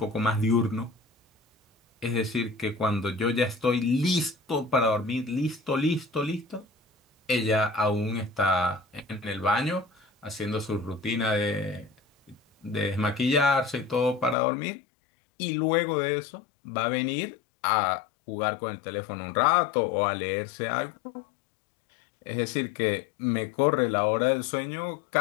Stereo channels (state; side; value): drops out; right; at 14.4 s